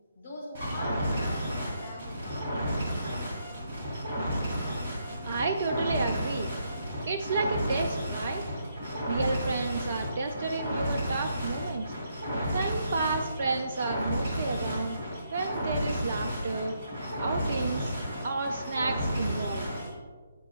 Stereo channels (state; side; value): inverted; both; correlation -0.77